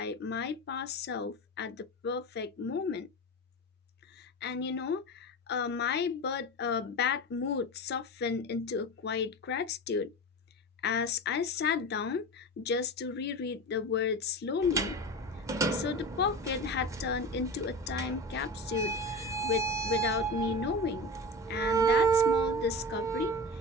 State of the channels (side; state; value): both; normal; correlation 0.27